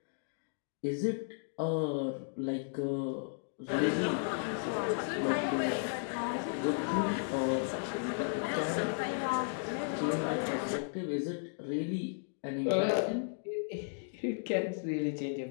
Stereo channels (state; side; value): silent; right; digital silence